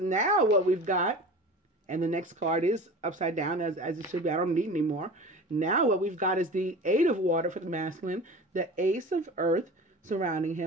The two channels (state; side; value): normal; both; correlation 0.36